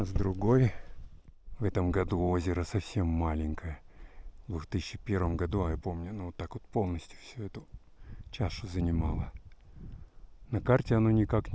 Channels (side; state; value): both; identical; correlation 1.00